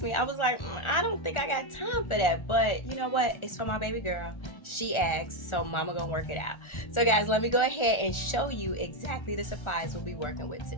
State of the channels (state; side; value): late; right; 1.4 ms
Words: me, I was like, I don't think I got time for that, but you know what? It's for my baby girl. She asked, so mama gonna work it out. So guys, let me go ahead and show you exactly the supplies we'll be working with